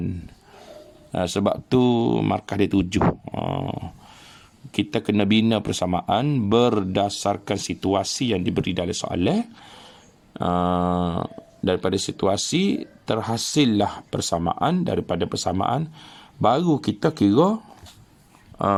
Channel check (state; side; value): identical; both; correlation 1.00